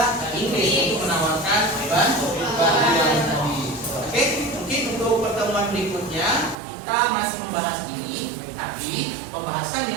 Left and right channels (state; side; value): drops out; left; at 6.6 s